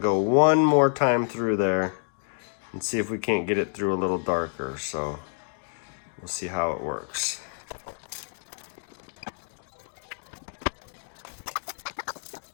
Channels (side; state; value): right; silent; digital silence